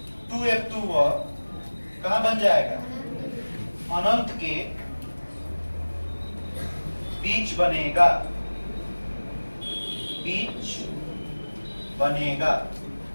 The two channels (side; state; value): both; inverted; correlation -1.00